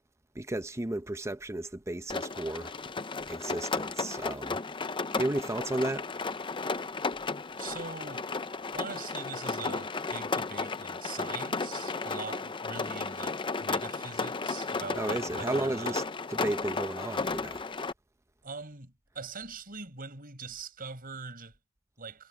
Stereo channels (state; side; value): normal; both; correlation 0.38